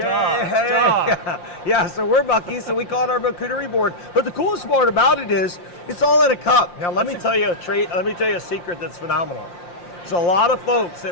so we're Buc-ee, so we call it our charcuterie board. But the coolest part about it is, it's all in a cup. Now, let me tell you a secret that's phenomenal. So a lot of folks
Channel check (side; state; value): right; late; 5.7 ms